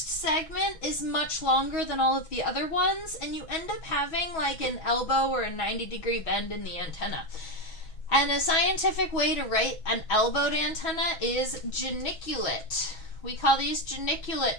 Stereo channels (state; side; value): late; right; 6.2 ms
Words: segment is much longer than all of the other ones, and you end up having like an elbow or a 90-degree bend in the antenna. And a scientific way to write an elbowed antenna is geniculate. We call these geniculate